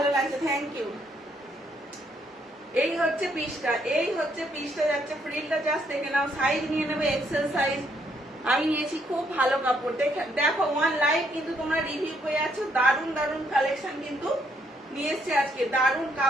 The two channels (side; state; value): both; normal; correlation 0.72